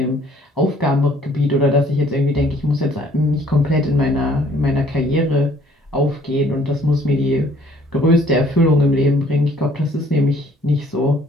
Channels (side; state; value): both; normal; correlation 0.59